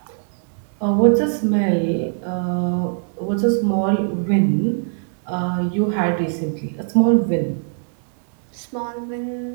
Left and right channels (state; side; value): silent; left; digital silence